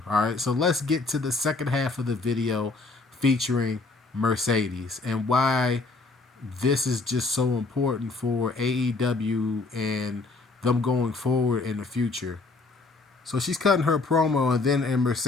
All right, so let's get to the second half of the video featuring Mercedes and why this is just so important for AEW and them going forward in the future. So she's cutting her promo, and then in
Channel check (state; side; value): quieter; right; 3.6 dB